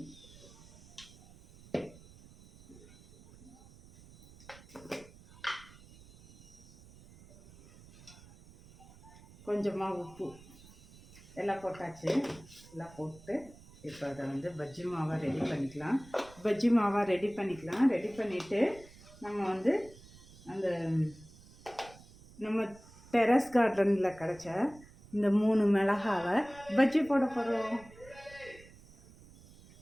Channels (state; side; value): noise; right; rumble, 22 dB below the sound